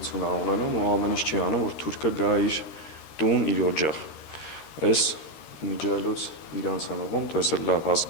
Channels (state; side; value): late; right; 13 ms